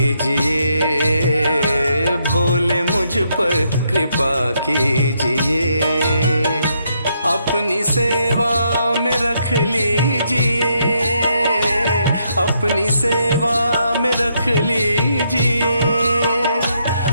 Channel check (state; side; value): inverted; both; correlation -0.76